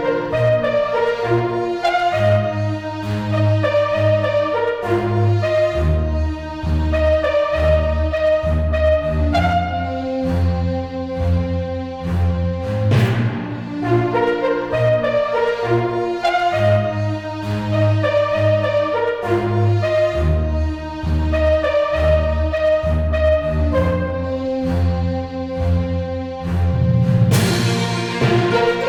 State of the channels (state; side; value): identical; both; correlation 1.00